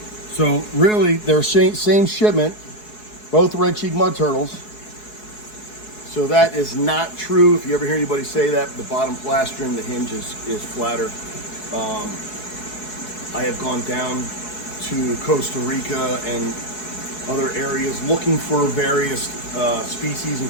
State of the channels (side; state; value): right; late; 4.7 ms